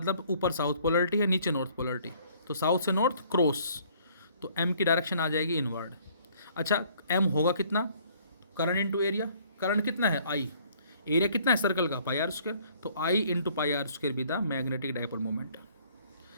ऊपर साउथ पोलरिटी है, नीचे नॉर्थ पोलरिटी, तो साउथ से नॉर्थ क्रॉस, तो एम की डायरेक्शन आ जाएगी इनवर्ड। अच्छा एम होगा कितना, करंट इंटू एरिया। करंट कितना है, आई। एरिया कितना है सर्कल का, पाई आर स्क्वायर। तो I into pi r square भी the magnetic dipole movement.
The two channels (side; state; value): both; inverted; correlation -0.59